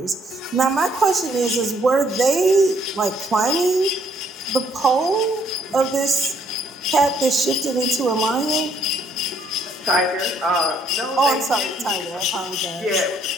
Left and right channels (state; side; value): normal; both; correlation 0.67